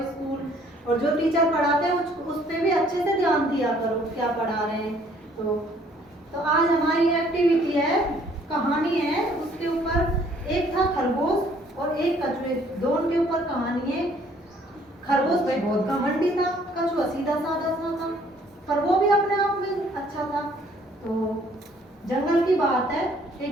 स्कूल, और जो टीचर पढ़ाते हैं उस पे भी अच्छे से ध्यान दिया करो क्या पढ़ा रहे हैं। तो आज हमारी एक्टिविटी है, कहानी है, उसके ऊपर एक था खरगोश और एक कछुए, दोनों के ऊपर कहानी है। खरगोश भाई बहुत घमंडी था, कछुआ सीधा साधा सा था, पर वो भी अपने आप में अच्छा था। तो जंगल की बात है,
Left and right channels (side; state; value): both; normal; correlation 0.61